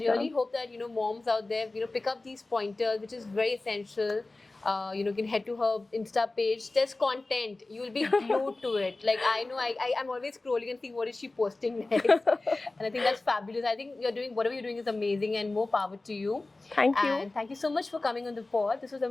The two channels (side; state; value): right; quieter; 3.1 dB